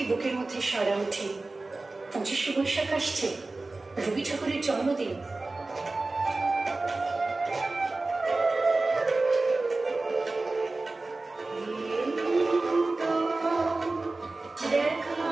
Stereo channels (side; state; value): left; quieter; 3.3 dB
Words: বুকের মধ্যে সাড়া উঠে 25শে বৈশাখ আসছে, রবি ঠাকুরের জন্মদিন।